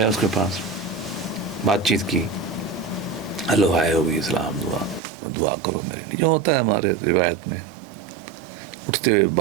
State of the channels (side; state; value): left; drops out; at 5.0 s